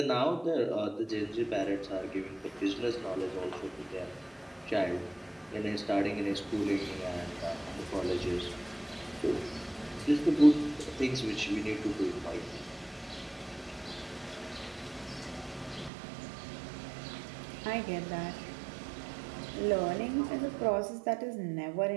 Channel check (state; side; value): drops out; left; at 15.9 s